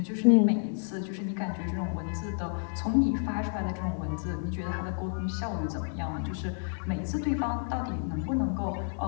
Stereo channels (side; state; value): right; silent; 58 dB below the other